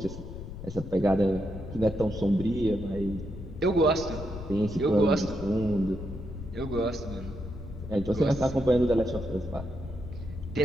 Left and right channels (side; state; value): left; noise; rumble, 10 dB below the sound